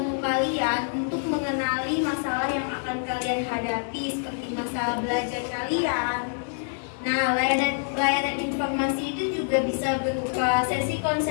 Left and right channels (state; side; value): silent; right; 61 dB below the other